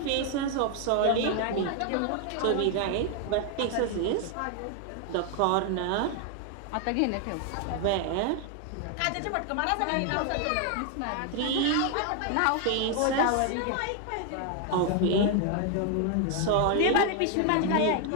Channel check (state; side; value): different; both; correlation 0.01